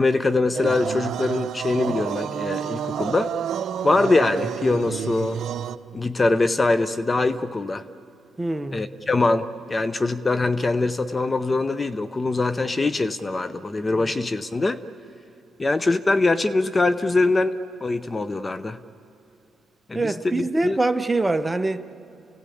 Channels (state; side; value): normal; both; correlation 0.91